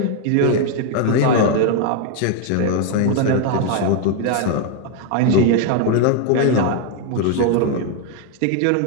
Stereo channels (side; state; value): both; different; correlation 0.01